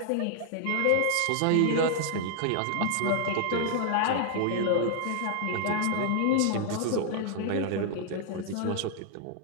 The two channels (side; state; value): both; different; correlation 0.00